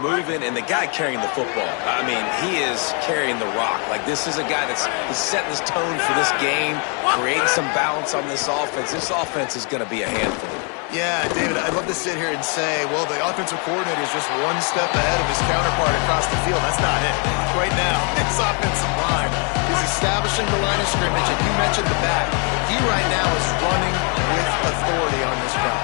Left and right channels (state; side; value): quieter; right; 37.4 dB